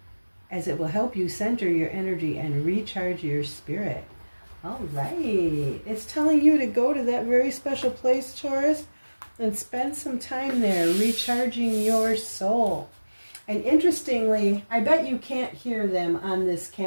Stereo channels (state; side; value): inverted; both; correlation -1.00